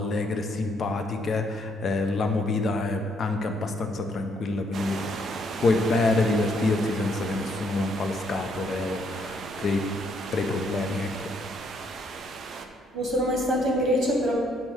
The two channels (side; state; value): both; normal; correlation 0.71